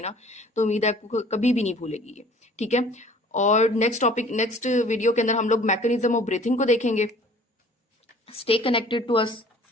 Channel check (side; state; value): both; normal; correlation 0.51